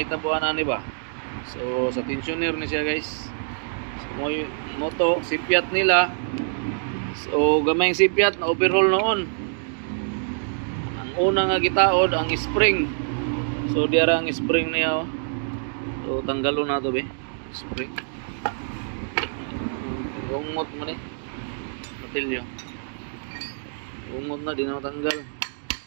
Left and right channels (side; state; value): left; silent; digital silence